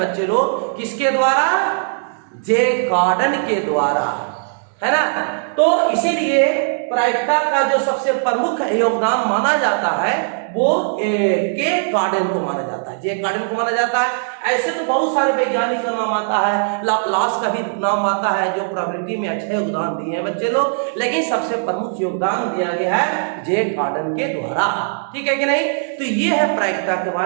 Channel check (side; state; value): left; silent; digital silence